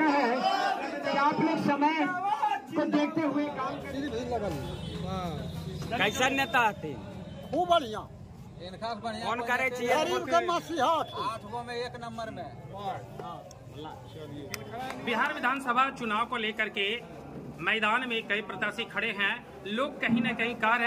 है कि आप लोग समय को देखते हुए काम करें। कैसा नेता आते खूब बढ़िया, कौन करे चाहिए? 8 गो में 1 नंबर में। बिहार विधानसभा चुनाव को लेकर के मैदान में कई प्रत्याशी खड़े हैं। लोग कहीं न कहीं कह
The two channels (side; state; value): both; identical; correlation 1.00